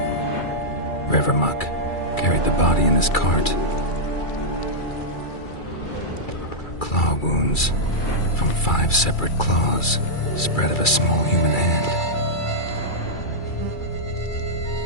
Revermuck carried the body in his cart. Claw wounds from 5 separate claws, spread of a small human hand.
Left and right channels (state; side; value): late; right; 2.3 ms